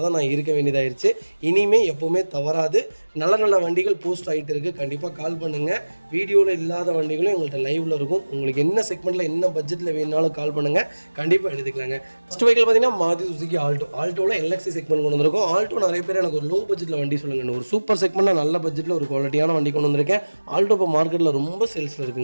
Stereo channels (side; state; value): both; inverted; correlation -1.00